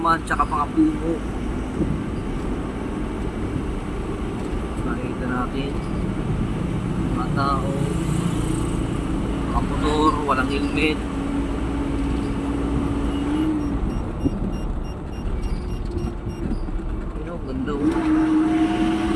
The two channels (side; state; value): both; identical; correlation 1.00